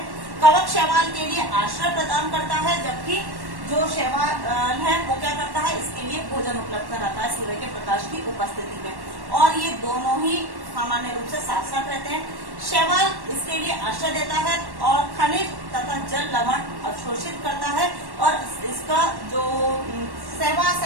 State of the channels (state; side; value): late; left; 1.1 ms